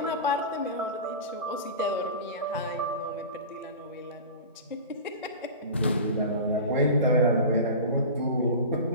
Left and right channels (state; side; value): inverted; both; correlation -0.31